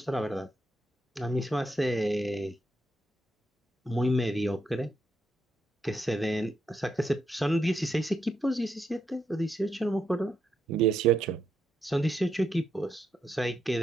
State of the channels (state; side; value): normal; both; correlation 0.81